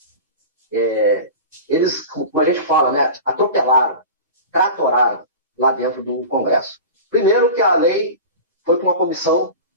Eles, como a gente fala, né, atropelaram, tratoraram lá dentro do Congresso. Primeiro que a lei foi para uma comissão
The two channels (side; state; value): both; inverted; correlation -0.32